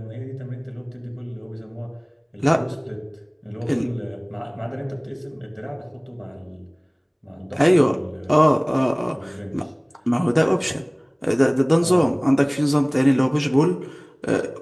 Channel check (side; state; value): both; identical; correlation 1.00